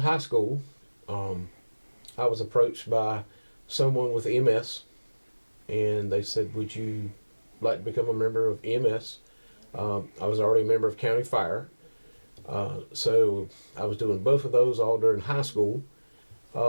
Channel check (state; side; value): inverted; both; correlation -1.00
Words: high school, I was approached by someone with EMS, and they said, would you like to become a member of EMS? I was already a member of County Fire, so I was doing both of those all during high school.